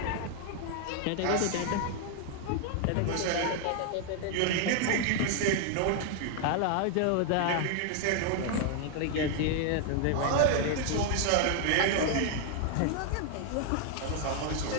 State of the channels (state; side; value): different; both; correlation 0.00